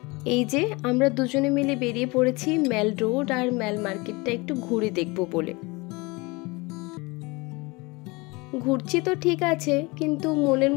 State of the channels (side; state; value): right; quieter; 25.3 dB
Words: এই যে আমরা দুজনে মিলে বেরিয়ে পড়েছি ম্যাল রোড আর ম্যাল মার্কেটটা একটু ঘুরে দেখব বলে। ঘুরছি তো ঠিক আছে, কিন্তু মনের